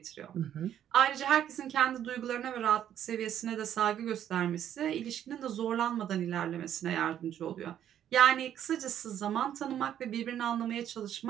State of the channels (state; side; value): quieter; left; 10.4 dB